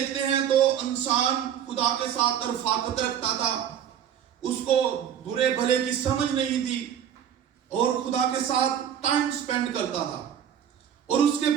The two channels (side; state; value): left; quieter; 9.4 dB